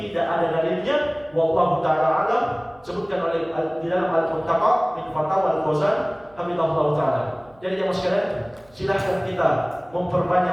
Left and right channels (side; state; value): right; noise; hum, 29 dB below the sound